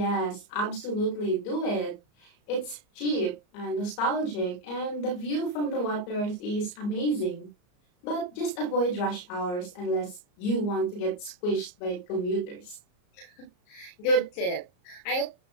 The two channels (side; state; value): right; late; 34 ms